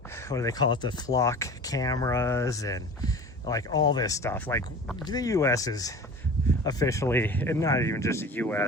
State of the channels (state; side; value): normal; both; correlation 0.39